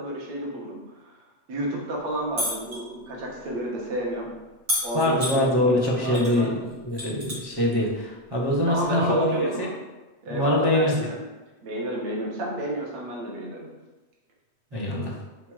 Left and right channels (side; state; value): left; late; 8.0 ms